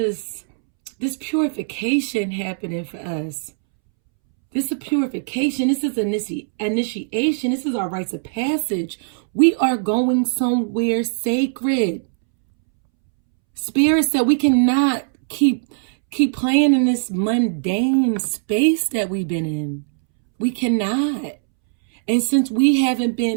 this purification happening for us. This is purification. This is initiation. This is our rites of passage. We are going somewhere sacred. Spirit said we cannot keep playing in this mundane space that we've been in. We cannot. And since we haven't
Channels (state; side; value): silent; left; 66 dB below the other